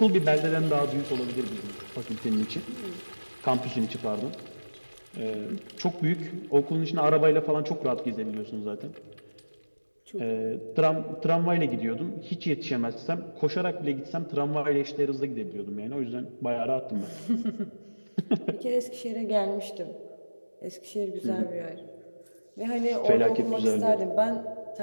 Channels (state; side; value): inverted; both; correlation -1.00